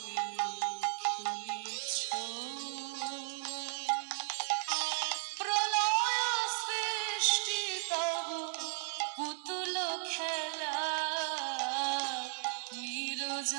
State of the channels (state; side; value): silent; left; digital silence